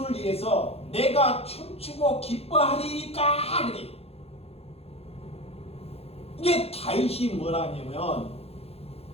위해서 내가 춤추고 기뻐하리까 그래. 이게 다윗이 뭐라냐면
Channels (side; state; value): right; late; 0.29 ms